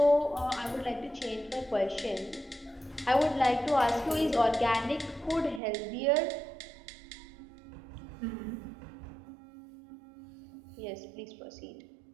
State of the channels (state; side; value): drops out; left; at 5.6 s